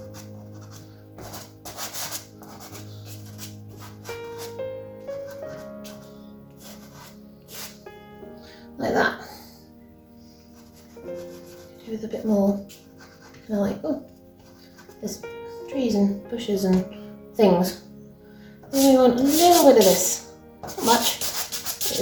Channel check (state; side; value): identical; both; correlation 1.00